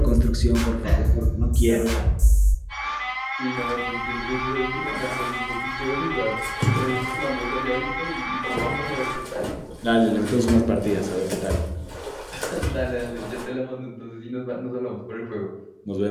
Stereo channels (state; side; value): identical; both; correlation 1.00